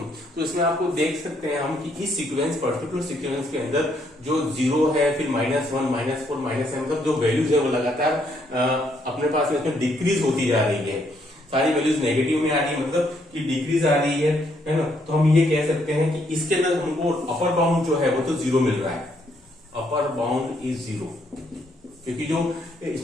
तो इसमें आपको देख सकते हैं हम कि इस सीक्वेंस पर्टिकुलर सीक्वेंस के अंदर जो 0 है, फिर -1 -4 -7 मतलब जो वैल्यूज है वो लगातार अपने पास में इसमें डिक्रीज होती जा रही है। सारी वैल्यूज नेगेटिव में आ रही है, मतलब कि डिक्रीज आ रही है ना। तो हम ये कह सकते हैं कि इसके अंदर हमको अपर बाउंड जो है वो तो 0 मिल रहा है, अपर बाउंड इज 0, क्योंकि जो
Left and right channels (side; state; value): both; normal; correlation 0.72